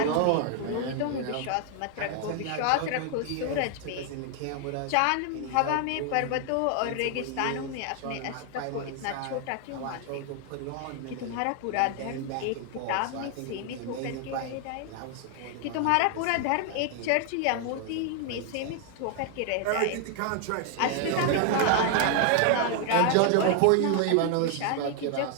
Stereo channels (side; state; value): both; different; correlation 0.00